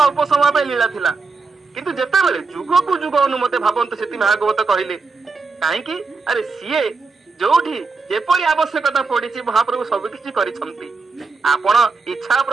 समय पे लीला थिला किंतु जेते बेले जुग को जुग अनुमते भावंत सेति भागवत कहिले काहे कि अरे सीए जोठी जेपरी आवश्यकता पड़ी महाप्रभु सबकि करिसंती। आपण इच्छा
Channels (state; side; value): quieter; left; 4.2 dB